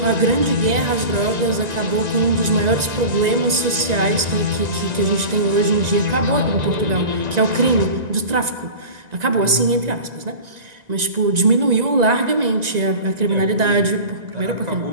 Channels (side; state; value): left; late; 1.9 ms